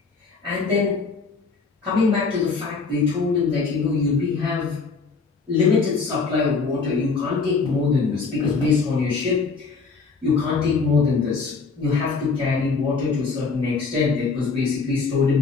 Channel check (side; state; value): right; quieter; 4.7 dB